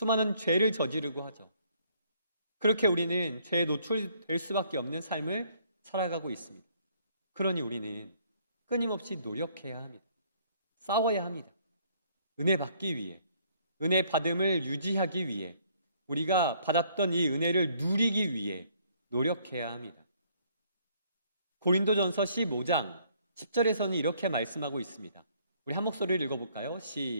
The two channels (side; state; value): both; inverted; correlation -0.64